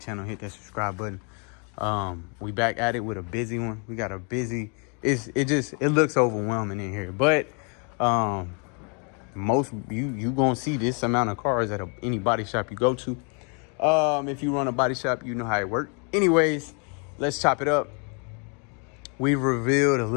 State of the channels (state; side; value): quieter; right; 36.8 dB